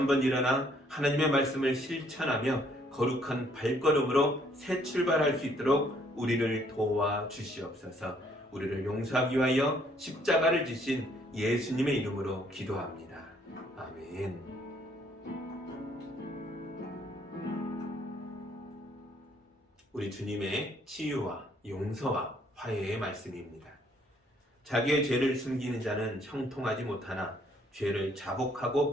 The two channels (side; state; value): both; normal; correlation 0.65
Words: 일어나 하나님의 말씀을 실천하며 거룩한 발걸음으로 새 출발할 수 있도록 우리를 도와 주시옵소서. 우리를 용서하기 위하여 십자가를 지신 예수님의 이름으로 기도합니다. 아멘. 우리 주님의 치유와 용서와 화해의 말씀입니다. 자기의 죄를 숨기는 자는 형통하지 못하나 죄를 자복하고